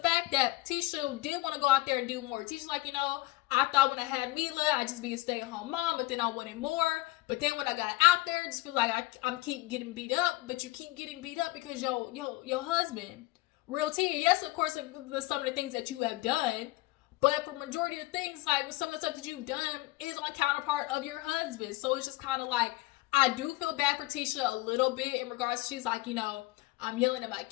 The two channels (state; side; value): quieter; right; 19.3 dB